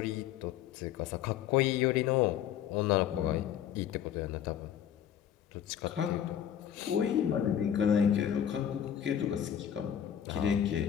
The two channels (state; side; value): quieter; right; 9.7 dB